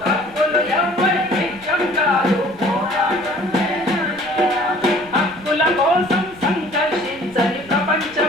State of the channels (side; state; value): right; noise; rumble, 23 dB below the sound